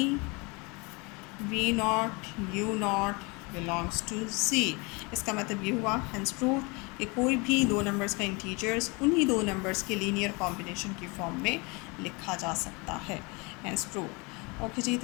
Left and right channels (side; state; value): right; quieter; 28.3 dB